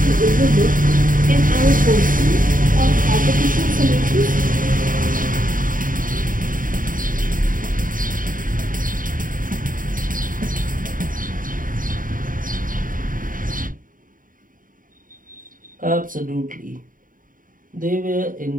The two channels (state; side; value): late; left; 0.39 ms